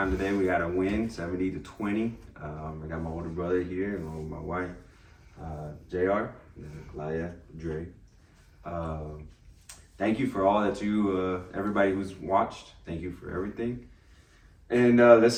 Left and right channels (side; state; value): both; identical; correlation 1.00